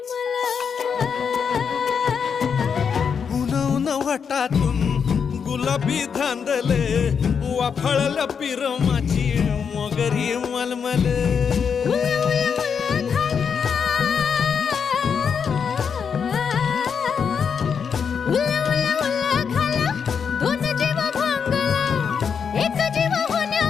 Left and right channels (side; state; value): right; quieter; 6.6 dB